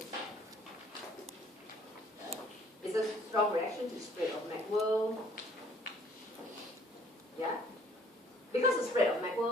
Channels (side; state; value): both; normal; correlation 0.59